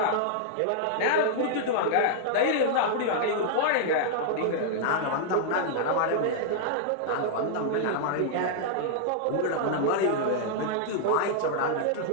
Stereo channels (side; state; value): both; different; correlation -0.01